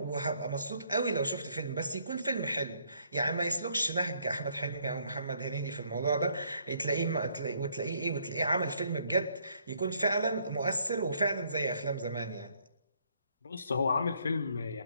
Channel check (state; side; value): inverted; both; correlation -0.68